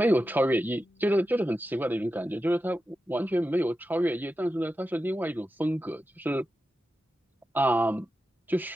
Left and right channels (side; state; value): both; normal; correlation 0.91